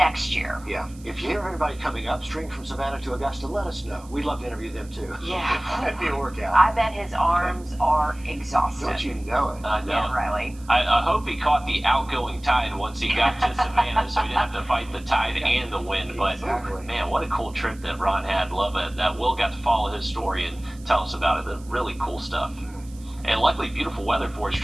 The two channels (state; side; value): noise; right; hiss, 24 dB below the sound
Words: year. Yeah. If you hear of anybody coming upstream from Savannah to Augusta, let us know. We'd love to interview them too. Yeah. That'd be a workout. I bet his arms are exhausted. Don't you know it? I know. Yeah, Riley. I hope he caught the outgoing tide once he got to Savannah, so he didn't have to fight the tide and the wind. But Exactly. man, what a cool trip that Ron had. Love it. That Will got to follow his story and tell us about it. The really cool stuff. And luckily, beautiful weather for his